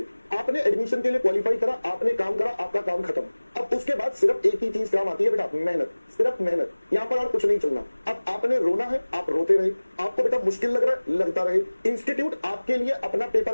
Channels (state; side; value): inverted; both; correlation -1.00